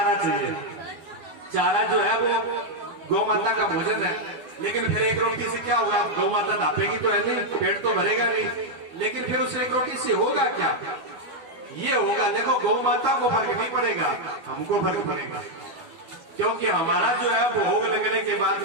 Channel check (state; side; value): late; left; 12 ms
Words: चाहिए। चारा जो है वो गौ माता का भोजन है। लेकिन फिर एक रोटी से क्या होगा? गौ माता दापेगी तो है नहीं, पेट तो भरेगा नहीं, लेकिन फिर उस एक रोटी से होगा क्या? ये होगा, देखो, गौ माता को फर्क नहीं पड़ेगा, हमको फर्क पड़ेगा। क्योंकि हमारा जो है भोग लगने के बाद